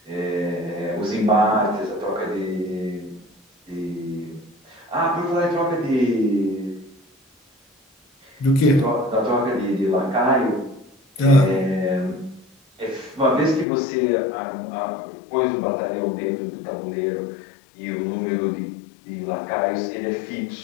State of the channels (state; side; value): drops out; right; at 13.7 s